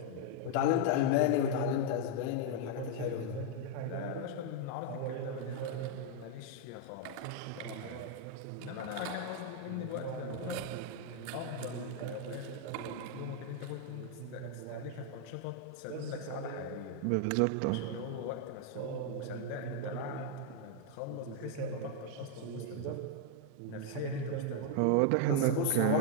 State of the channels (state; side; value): different; both; correlation 0.00